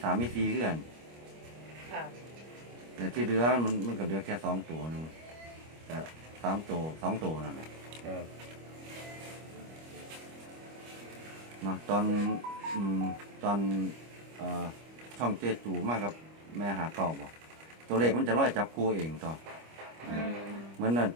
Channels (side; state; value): left; late; 25 ms